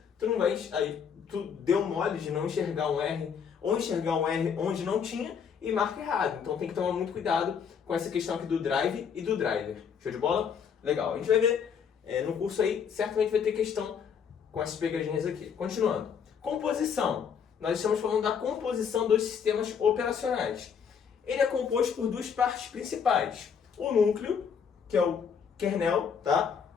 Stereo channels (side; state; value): right; quieter; 7.0 dB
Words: tu não vai, aí tu deu mole de não enxergar um R, ou enxergar um R onde não tinha e marca errado. Então tem que tomar muito cuidado com essa questão aqui do drive e do driver. Show de bola? Legal. A gente vai ver no curso aí, certamente vai ter questão com essas pegadinhas aqui. Continuando. Composição. Nós estamos falando da composição dos sistemas operacionais. Ele é composto por 2 partes principais. O núcleo, que é o kernel, tá?